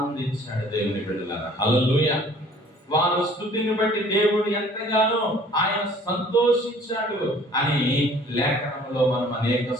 దేవుని బిడ్డలారా, హల్లెలూయా. వారి స్తుతిని బట్టి దేవుడు ఎంతగానో ఆయన సంతోషించాడు అని లేఖనంలో మనం అనేక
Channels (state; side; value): normal; both; correlation 0.53